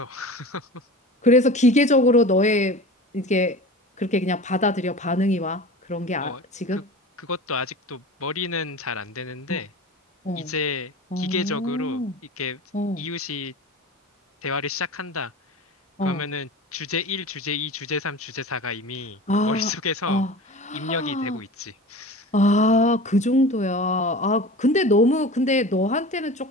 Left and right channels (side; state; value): both; normal; correlation 0.35